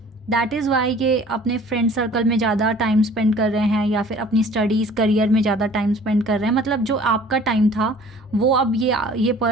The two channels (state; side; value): normal; both; correlation 0.50